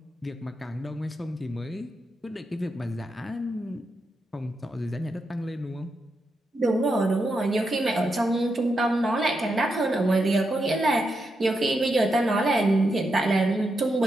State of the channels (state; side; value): normal; both; correlation 0.84